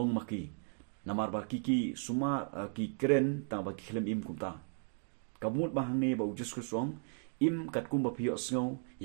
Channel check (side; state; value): left; silent; 54 dB below the other